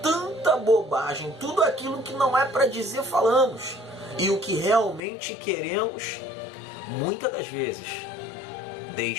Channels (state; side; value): drops out; right; at 5.1 s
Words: tanta bobagem, tudo aquilo que não é para dizer falamos, e o que realmente queremos, muitas das vezes,